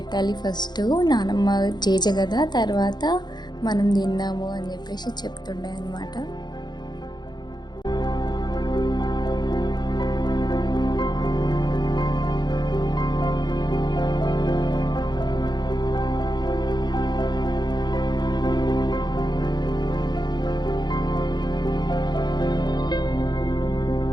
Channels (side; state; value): right; late; 0.21 ms